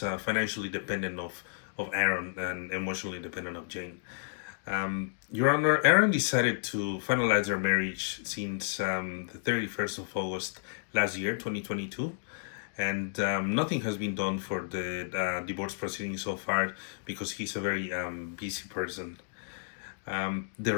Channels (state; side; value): silent; right; digital silence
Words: financially dependent of Aaron and emotionally dependent of Jane. Your Honor, Aaron decided to finalize their marriage since the 31st of August last year, 2022, and nothing has been done for the divorce proceedings so far because he's a very busy person. The